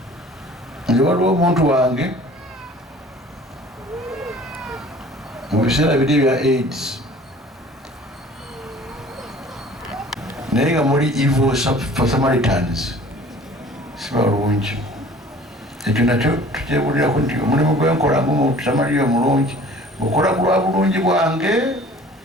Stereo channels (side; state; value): both; normal; correlation 0.48